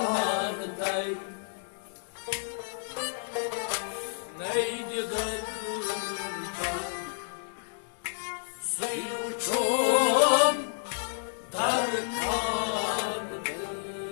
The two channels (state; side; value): silent; right; digital silence